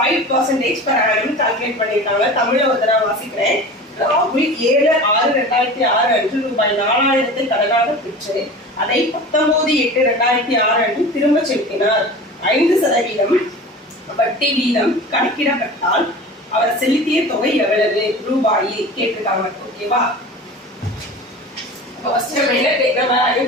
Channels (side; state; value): both; normal; correlation 0.35